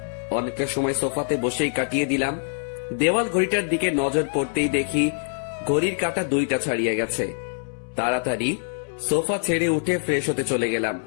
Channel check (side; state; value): right; silent; 62 dB below the other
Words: অনেকটা সময় সোফাতে বসেই কাটিয়ে দিলাম। দেওয়াল ঘড়িটার দিকে নজর পড়তেই দেখি ঘড়ির কাঁটা 2টা ছাড়িয়ে গেছে। তাড়াতাড়ি সোফা ছেড়ে উঠে ফ্রেশ হতে চলে গেলাম।